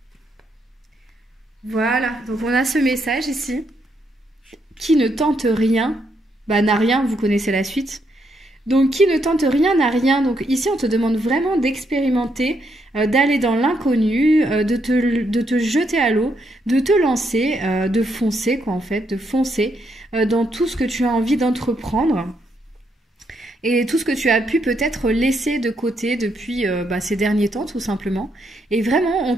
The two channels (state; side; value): normal; both; correlation 0.77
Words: Voilà, donc on a ce message ici. Qui ne tente rien, n'a rien, vous connaissez la suite. Donc, qui ne tente rien n'a rien. Donc, ici, on te demande vraiment d'expérimenter, d'aller dans l'inconnu, de te jeter à l'eau, de te lancer, de foncer, quoi, en fait, de foncer dans tout ce que tu as envie d'entreprendre et tout ce que tu as pu peut-être laisser de côté depuis ces derniers temps, tout simplement. Et vraiment, on